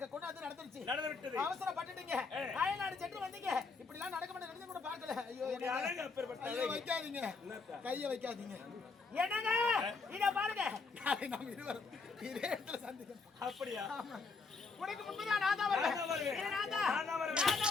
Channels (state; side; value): quieter; right; 4.4 dB